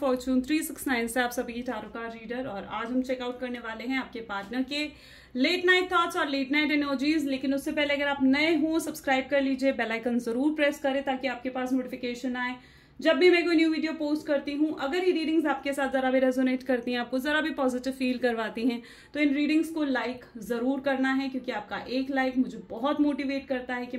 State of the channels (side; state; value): both; identical; correlation 1.00